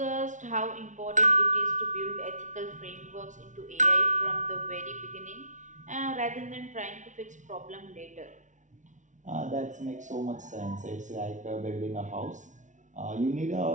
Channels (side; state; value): left; late; 0.36 ms